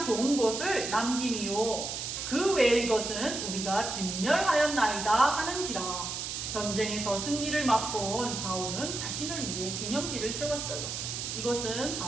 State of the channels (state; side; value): noise; right; hiss, 4 dB below the sound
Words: 좋은 것을 남김이요 그 외의 것은 우리가 진멸하였나이다 하는지라. 전쟁에서 승리를 맛본 사울은 자신을 위해 기념비를 세웠어요. 이것은